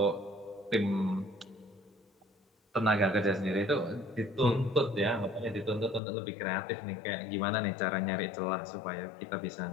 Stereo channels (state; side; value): drops out; right; at 6.0 s